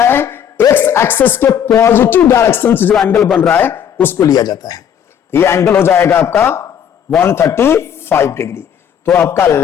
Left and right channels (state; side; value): quieter; right; 8.8 dB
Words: है एक्स एक्सिस के पॉजिटिव डायरेक्शन से जो एंगल बन रहा है उसको लिया जाता है। ये एंगल हो जाएगा आपका 135 डिग्री। तो आपका